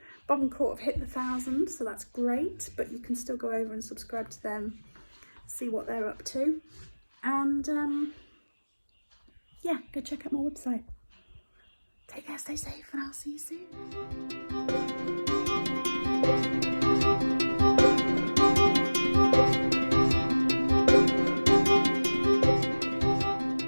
Bob and Court have hit the 1,000, so that's great, but you can still go over and subscribe to them, see what they're up to, and yeah, go check out my website. Take care, stay safe, and I'll see you soon.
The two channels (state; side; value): inverted; both; correlation -1.00